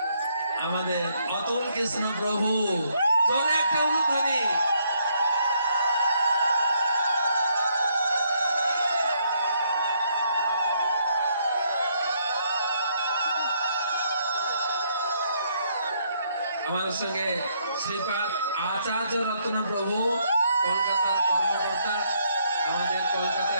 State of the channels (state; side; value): inverted; both; correlation -0.72